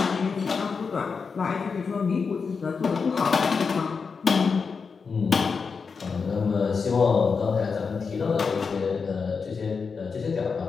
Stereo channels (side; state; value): right; quieter; 5.3 dB